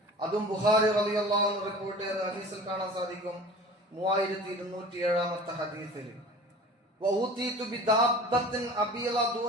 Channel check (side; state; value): both; normal; correlation 0.41